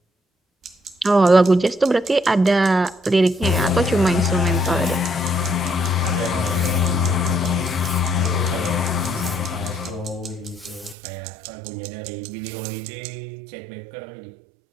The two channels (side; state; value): left; drops out; at 11.0 s